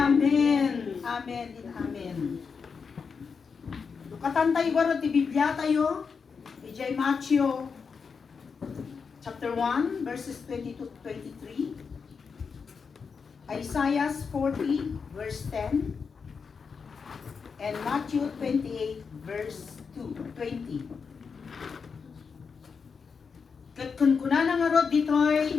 Amen and amen. Lukatan tayo garo ti Biblia tayo. Ijay Matthew chapter 1 verses 22 to 23. Isaiah 40 verse 10. And Matthew 28 verse 20. Kat kun kunana nga rod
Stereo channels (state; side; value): quieter; right; 5.6 dB